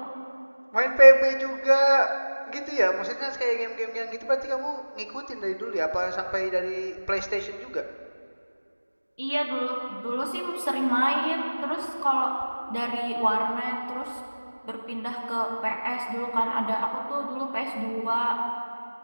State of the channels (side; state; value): both; inverted; correlation -1.00